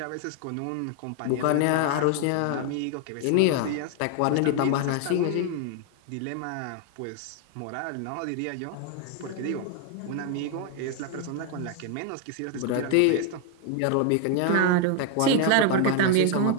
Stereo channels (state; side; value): different; both; correlation 0.00